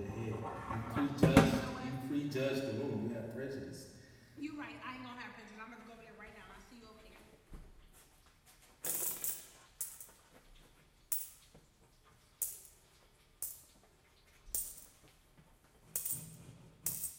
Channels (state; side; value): identical; both; correlation 1.00